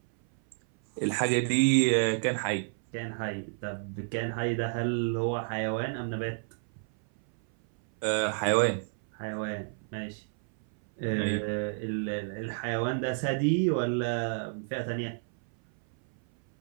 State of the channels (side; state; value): left; silent; 58 dB below the other